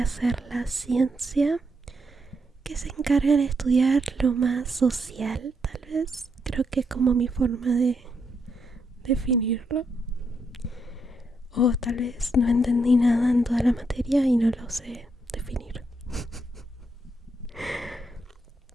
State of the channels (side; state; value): both; normal; correlation 0.79